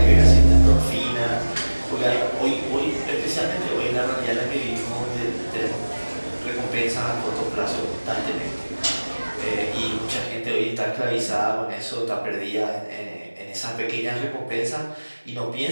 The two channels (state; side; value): inverted; both; correlation -1.00